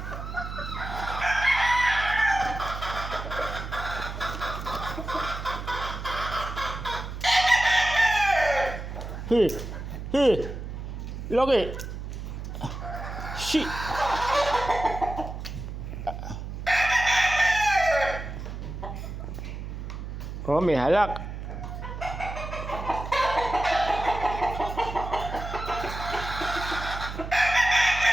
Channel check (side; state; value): right; noise; hum, 7 dB below the sound